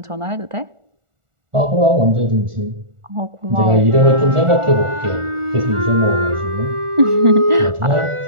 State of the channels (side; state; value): left; late; 1.4 ms